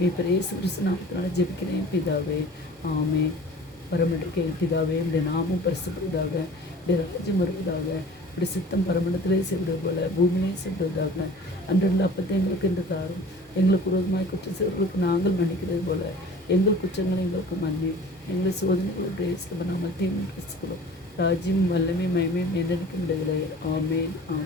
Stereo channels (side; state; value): both; normal; correlation 0.44